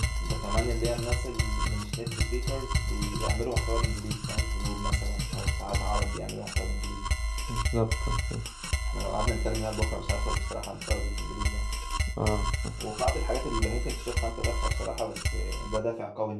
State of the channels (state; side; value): identical; both; correlation 1.00